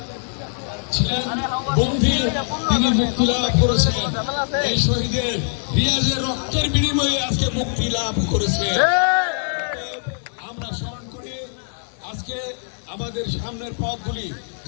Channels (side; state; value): right; silent; 64 dB below the other